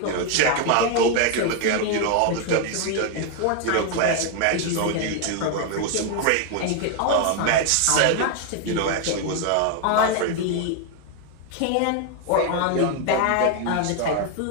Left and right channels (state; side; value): different; both; correlation 0.01